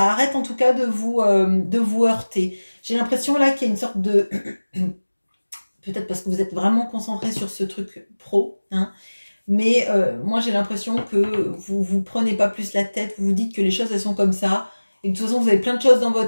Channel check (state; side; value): inverted; both; correlation -1.00